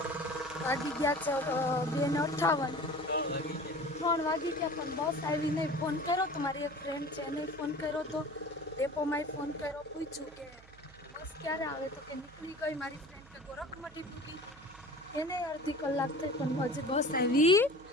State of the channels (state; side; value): noise; right; hum, 23 dB below the sound